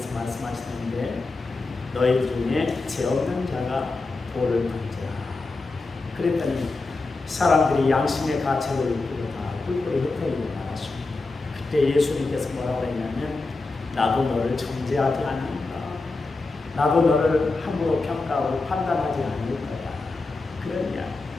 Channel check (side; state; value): right; quieter; 3.5 dB